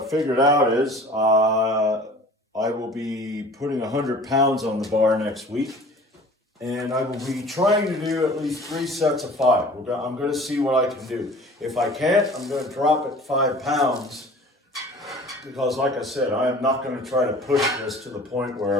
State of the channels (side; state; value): both; normal; correlation 0.45